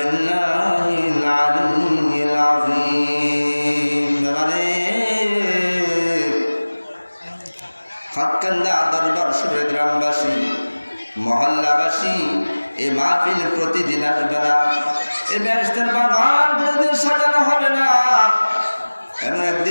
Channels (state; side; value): inverted; both; correlation -1.00